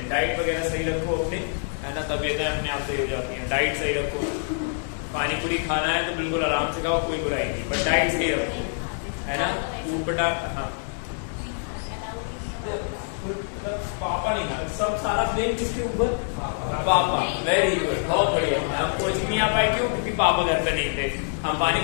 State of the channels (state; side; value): silent; right; 61 dB below the other